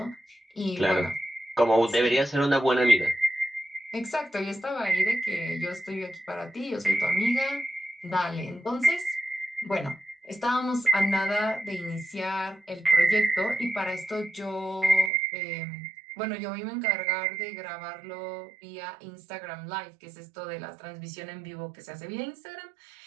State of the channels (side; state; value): left; drops out; at 15.1 s